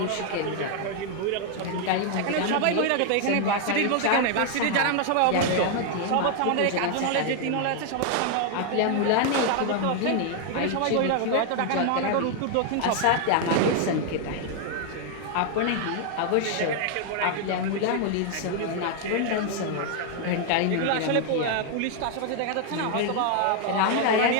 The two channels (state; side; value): different; both; correlation 0.00